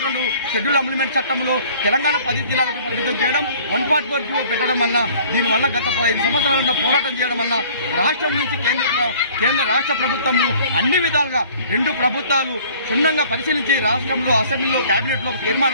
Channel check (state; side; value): inverted; both; correlation -0.52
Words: షెడ్యూల్ అమెండ్మెంట్ చట్టంలో తెలంగాణ 10 జిల్లాలకు పరిమితం చేయడం, 144 జీవో పెట్టడం వల్ల దీనివల్ల గత 15 సంవత్సరాల పోరాటం చేయడం వల్ల రాష్ట్రం నుంచి కేంద్ర రాష్ట్ర ప్రభుత్వము అన్ని విధాలుగా 2 ప్రభుత్వాలు క్షుణ్ణంగా పరిశీలించి రాష్ట్రంలో అసెంబ్లీలో కేబినెట్ లో